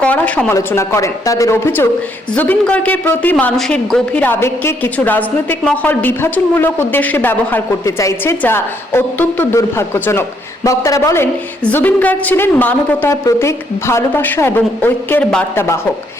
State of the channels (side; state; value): both; normal; correlation 0.72